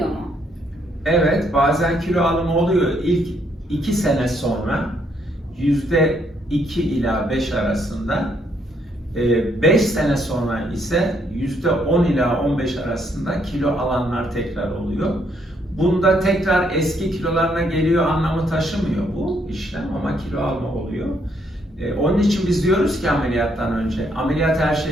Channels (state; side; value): normal; both; correlation 0.72